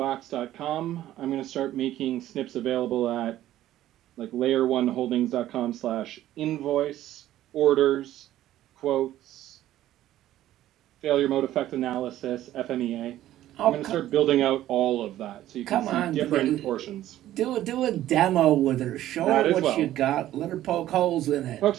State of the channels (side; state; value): left; quieter; 13.5 dB